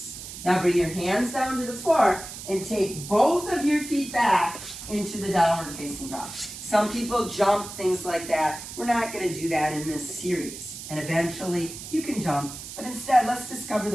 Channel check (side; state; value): right; noise; hiss, 11 dB below the sound